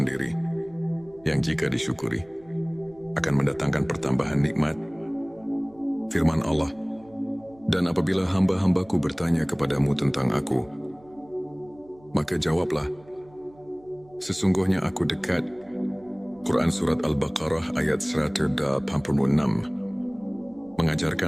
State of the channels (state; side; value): noise; right; hum, 27 dB below the sound